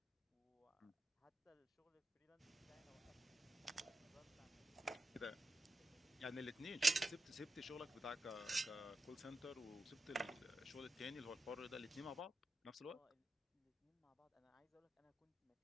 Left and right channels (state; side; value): normal; both; correlation 0.89